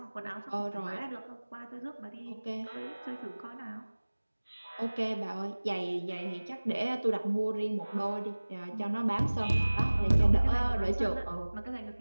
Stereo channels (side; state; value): both; inverted; correlation -1.00